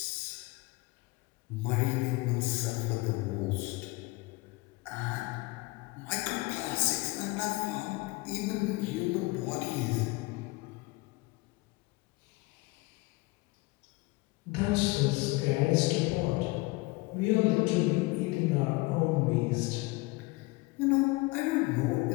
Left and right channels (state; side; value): quieter; right; 23.5 dB